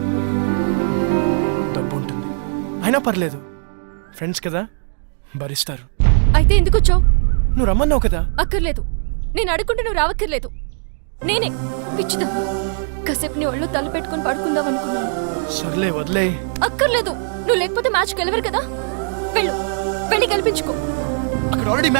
డబ్బు ఉంటుంది, అయినా పర్లేదు, ఫ్రెండ్స్ కదా, భరిస్తారు. అయితే ఎందుకు వచ్చావు? నువ్వు రమ్మన్నావు కదా. అక్కర్లేదు, నేను అడుగుంటే నువ్వు రావక్కర్లేదు. నేనే పిచ్చిదా కాసేపు నీ ఒళ్ళు తల పెట్టుకుని పడుకుందాం అనుకున్నాను. సర్లే వదిలే. అక్కర్లేదు, నువ్వు లేకపోతే మ్యాచ్ గెలవరు కదా. వెళ్ళు, వెళ్ళి గెలిపించుకో. అక్కడ ఆల్రెడీ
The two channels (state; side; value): silent; left; 56 dB below the other